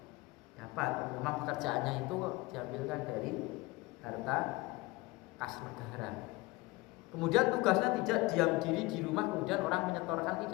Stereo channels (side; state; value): right; quieter; 22.0 dB